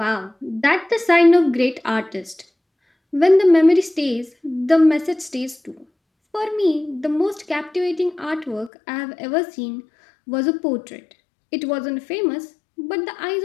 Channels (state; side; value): drops out; right; at 8.7 s